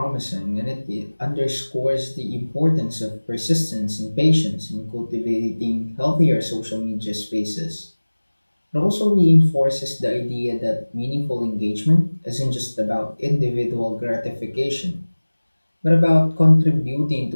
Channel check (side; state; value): both; inverted; correlation -1.00